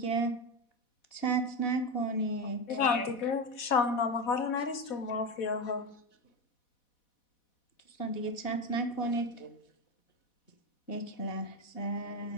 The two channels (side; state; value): right; late; 4.1 ms